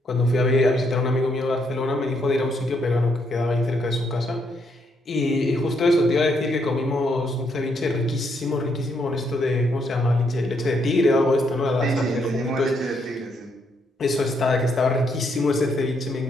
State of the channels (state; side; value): normal; both; correlation 0.75